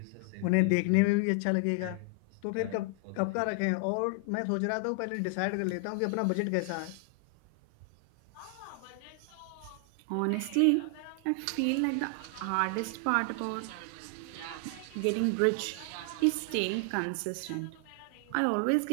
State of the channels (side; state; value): both; different; correlation 0.00